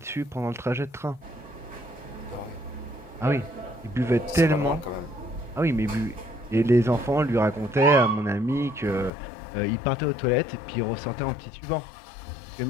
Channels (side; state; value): right; drops out; at 9.1 s